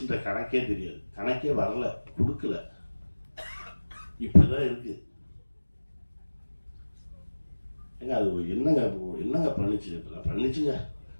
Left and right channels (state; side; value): inverted; both; correlation -1.00